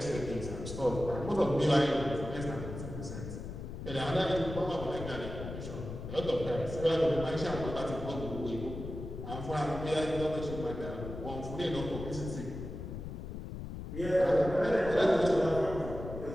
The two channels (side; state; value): left; noise; rumble, 8 dB below the sound